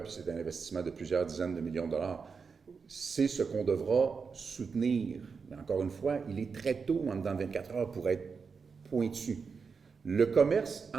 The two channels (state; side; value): quieter; left; 5.4 dB